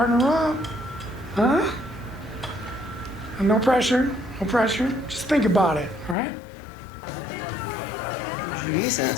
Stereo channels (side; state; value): right; drops out; at 6.2 s